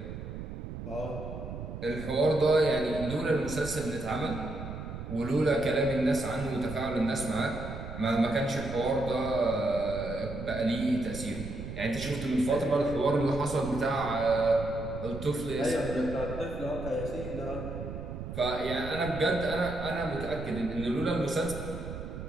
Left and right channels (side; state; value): right; noise; rumble, 8 dB below the sound